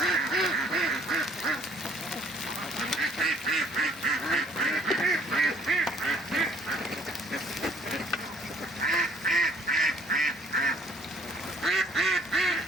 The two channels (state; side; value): normal; both; correlation 0.60